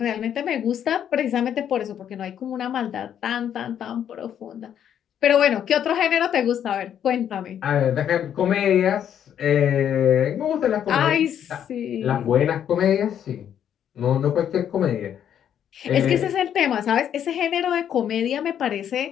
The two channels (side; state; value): right; quieter; 9.5 dB